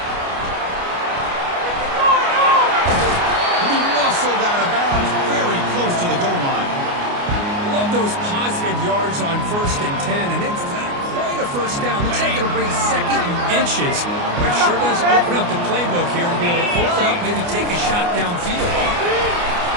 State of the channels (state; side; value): late; left; 29 ms